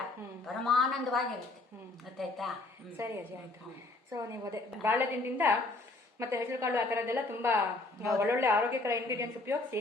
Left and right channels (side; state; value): right; quieter; 3.2 dB